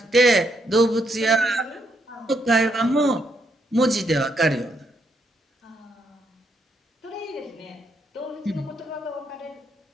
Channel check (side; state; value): both; normal; correlation 0.76